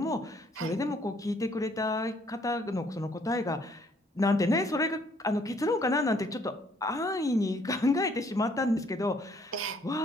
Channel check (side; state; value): both; normal; correlation 0.64